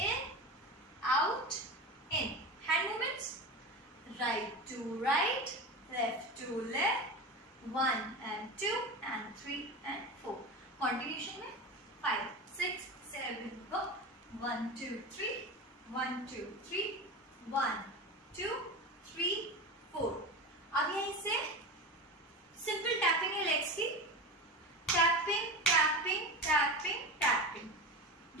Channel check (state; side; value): normal; both; correlation 0.25